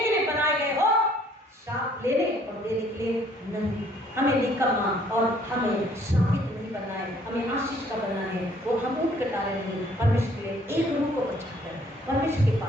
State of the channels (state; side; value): normal; both; correlation 0.61